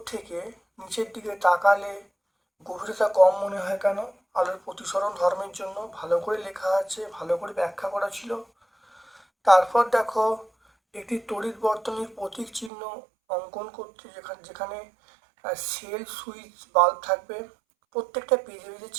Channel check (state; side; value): drops out; left; at 12.7 s